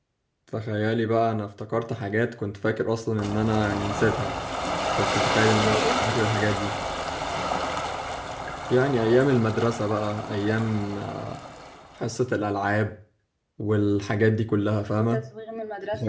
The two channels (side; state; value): both; identical; correlation 1.00